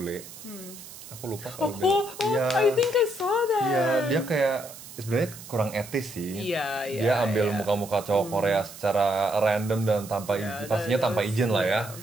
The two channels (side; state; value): right; noise; hiss, 15 dB below the sound